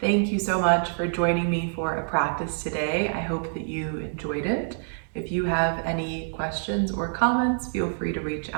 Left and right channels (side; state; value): left; silent; digital silence